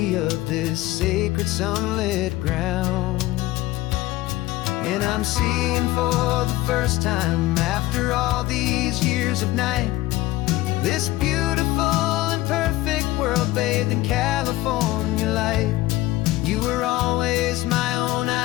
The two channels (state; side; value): quieter; right; 17.3 dB